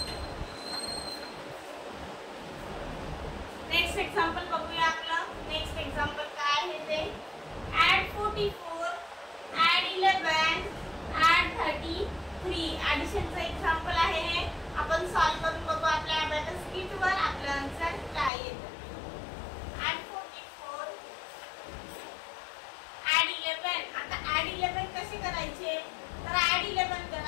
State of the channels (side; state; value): right; drops out; at 18.3 s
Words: नेक्स्ट एक्झाम्पल बघूया आपलं। नेक्स्ट एक्झाम्पल काय आहे ते add 44 add 11 add 33 ॲडिशनचं एक्झाम्पल आहे हे। आपण सॉल्व्ह करून बघू आपल्या अबॅकस किटवर आपलं आन्सर काय येतं। add 44 add 11 आता add 11 कसे करायचे तर add 11